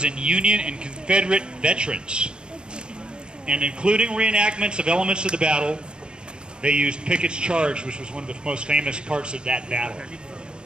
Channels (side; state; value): left; late; 0.051 ms